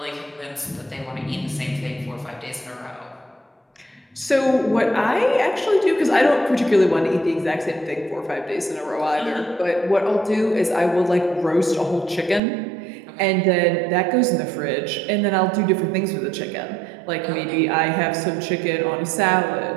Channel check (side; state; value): left; drops out; at 12.4 s